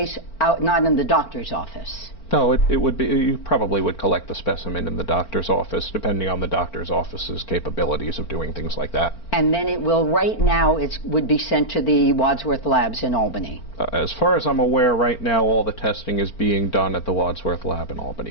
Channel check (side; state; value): right; late; 4.4 ms